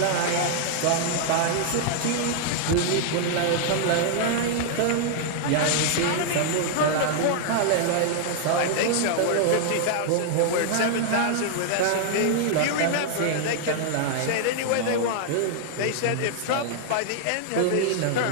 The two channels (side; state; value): both; different; correlation -0.01